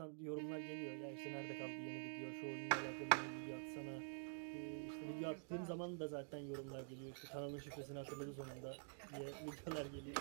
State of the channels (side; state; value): left; silent; digital silence